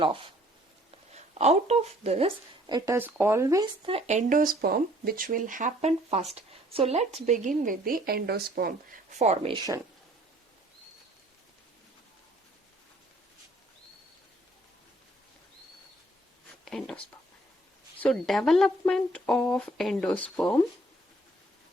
off. Out of this, it is always the endosperm which will happen first. So let's begin with the endosperm formation. Endosperm. So development of endosperm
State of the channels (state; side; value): normal; both; correlation 0.60